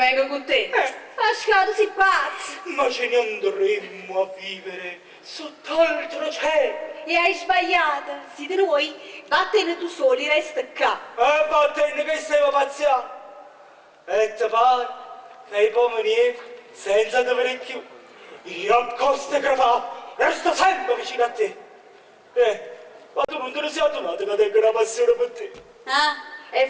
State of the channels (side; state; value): both; identical; correlation 1.00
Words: con te. Pasquale, tu sei pazzo. Ma ce ne andremmo a vivere sott'altro cielo. E hai sbagliato. Siete noi, vattene tu soli, resta qua. E vattene che stiamo pazziando. E ti pare che i pomerieri, senza dover più, io a coste crepate, resto sempre vicino a te. Ma tu non te ne sei addonato che tengo una passione per te. E